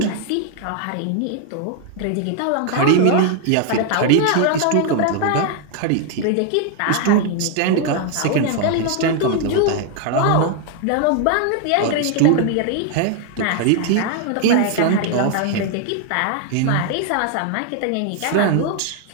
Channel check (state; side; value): different; both; correlation 0.00